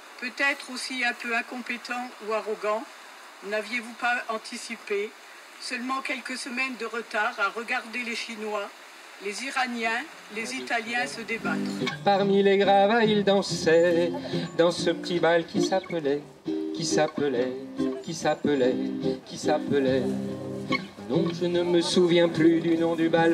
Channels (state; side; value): identical; both; correlation 1.00